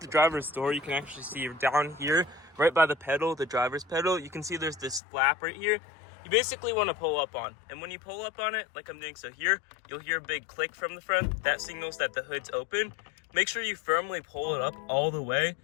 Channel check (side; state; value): right; drops out; at 5.0 s